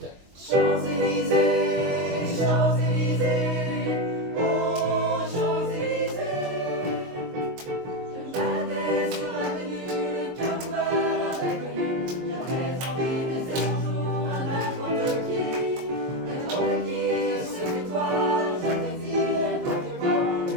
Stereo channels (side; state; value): left; late; 22 ms